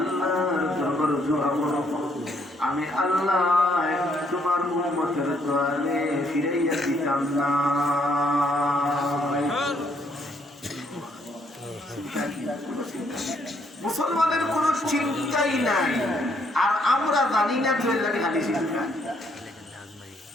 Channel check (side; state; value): both; normal; correlation 0.70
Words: দরবারে দোয়া করব, আমি আল্লাহ তোমার উম্মতের দোয়ারে ফিরাইয়া দিতাম না। মুসলমানের কোন চিন্তাই নাই, আর আমরা জানি না তো লাগে খালি চিন্তা।